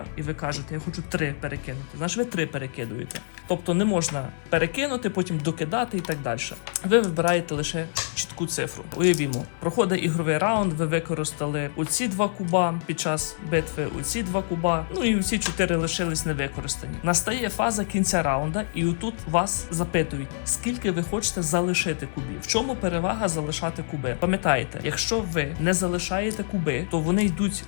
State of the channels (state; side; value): silent; right; 61 dB below the other